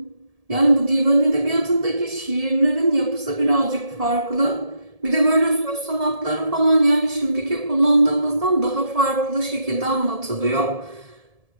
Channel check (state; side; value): late; left; 1.7 ms